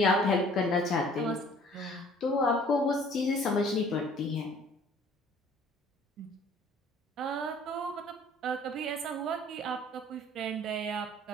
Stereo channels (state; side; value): normal; both; correlation 0.54